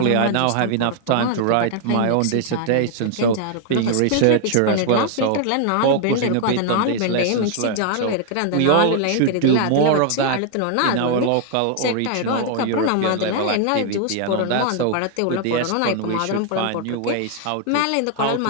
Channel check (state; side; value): different; both; correlation 0.00